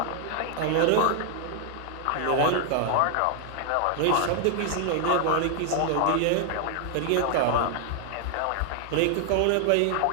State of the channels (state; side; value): different; both; correlation 0.00